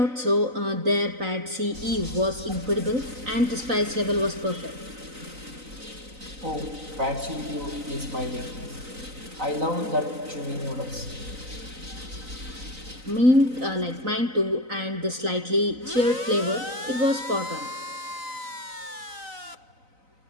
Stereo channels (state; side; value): late; left; 3.9 ms